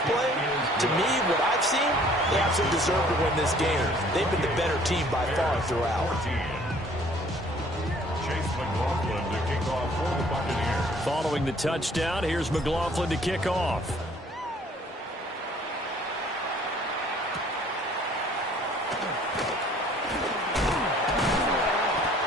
playing, to me, what I've seen, they absolutely deserve to win this game. They've been the better team by far throughout. Chase McLaughlin to kick off for the Buccaneers. Following the touchdown, here's McLaughlin to kick off.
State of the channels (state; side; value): normal; both; correlation 0.56